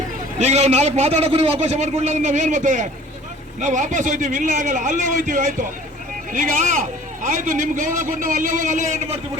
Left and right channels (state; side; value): normal; both; correlation 0.49